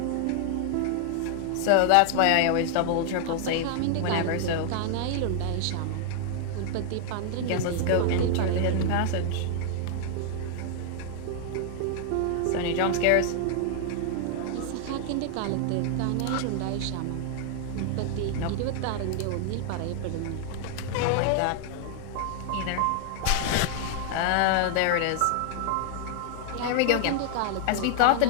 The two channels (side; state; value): both; different; correlation 0.00